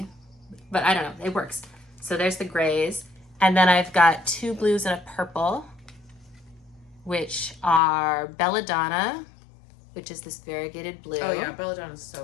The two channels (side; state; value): right; drops out; at 7.8 s